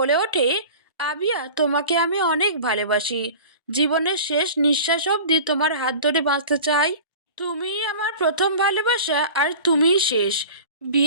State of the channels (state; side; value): inverted; both; correlation -0.38